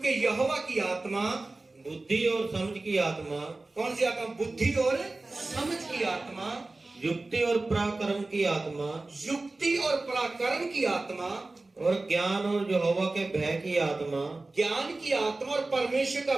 यहोवा की आत्मा बुद्धि और समझ की आत्मा। कौन सी आत्मा? बुद्धि और समझ की आत्मा, युक्ति और पराक्रम की आत्मा, युक्ति और पराक्रम की आत्मा, और ज्ञान और यहोवा के भय की आत्मा, ज्ञान की आत्मा और परमेश्वर का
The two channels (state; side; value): quieter; left; 3.2 dB